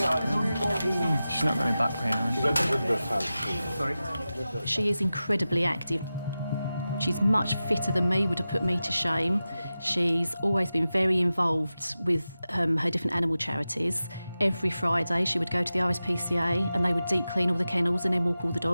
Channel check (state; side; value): inverted; both; correlation -0.94